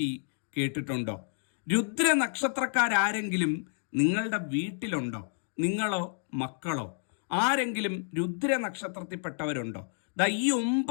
കേട്ടിട്ടുണ്ടോ? രുദ്ര നക്ഷത്രക്കാരെങ്കിലും നിങ്ങളുടെ വീട്ടിലുണ്ടോ? നിങ്ങളോ മക്കളോ ആരെങ്കിലും രുദ്ര നക്ഷത്രത്തിൽപ്പെട്ടവരുണ്ടോ? ഈ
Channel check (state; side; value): silent; right; digital silence